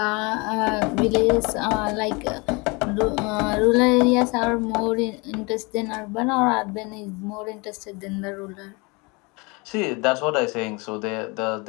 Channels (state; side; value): quieter; right; 27.8 dB